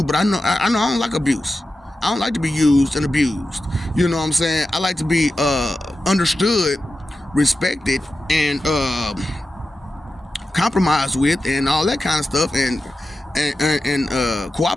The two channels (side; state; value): both; normal; correlation 0.92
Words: but I know I don't like abuse. I don't like to be used and abused. You know what I'm saying? I like to be understood, respected, and compromised with, and all that kind of stuff, and